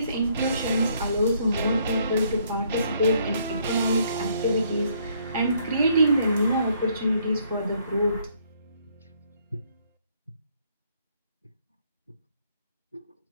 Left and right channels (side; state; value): both; inverted; correlation -0.68